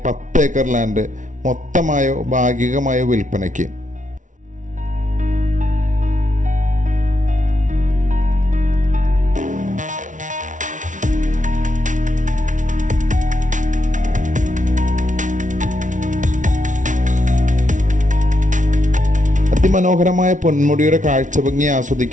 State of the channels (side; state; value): left; late; 0.37 ms